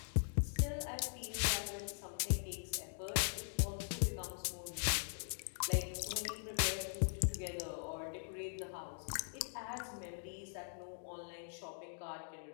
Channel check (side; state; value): right; silent; digital silence